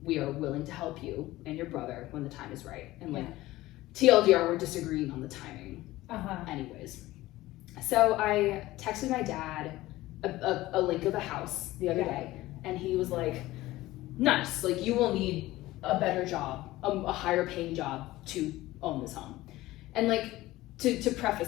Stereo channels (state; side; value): quieter; right; 17.4 dB